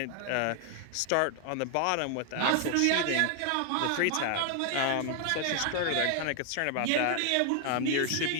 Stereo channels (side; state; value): both; different; correlation 0.00